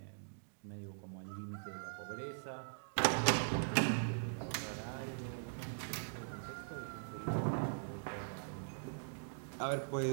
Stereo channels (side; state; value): left; silent; digital silence